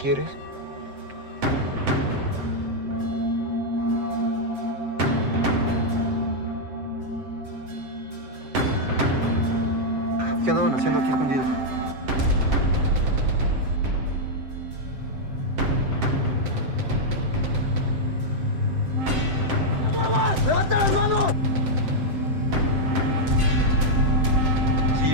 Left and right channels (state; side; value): late; left; 7.7 ms